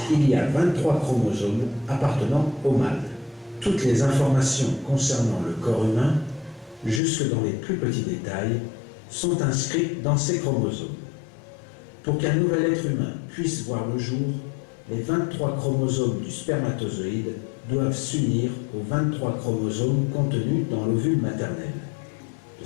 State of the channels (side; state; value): right; drops out; at 7.0 s